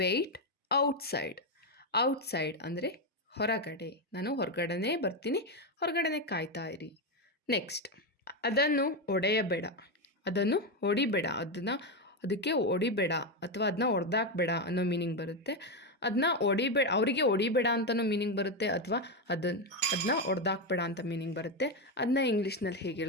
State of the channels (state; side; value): normal; both; correlation 0.09